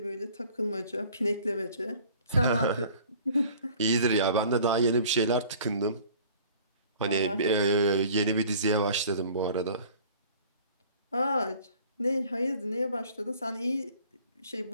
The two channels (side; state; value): both; inverted; correlation -0.50